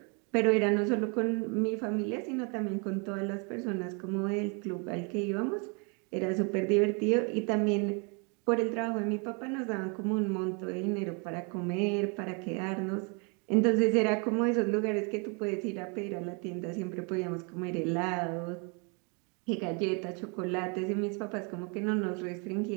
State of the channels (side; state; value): left; quieter; 34.2 dB